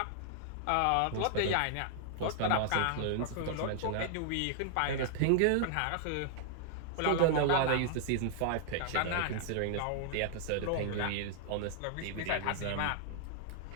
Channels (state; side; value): different; both; correlation -0.01